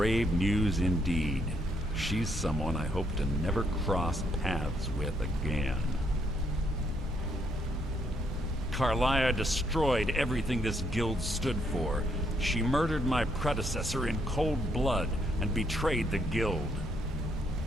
news indeed. She's someone I hope to never cross paths with again. Carlia destroyed everything this guild stood for. She murdered my predecessor in cold blood and betrayed the guild.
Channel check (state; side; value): normal; both; correlation 0.73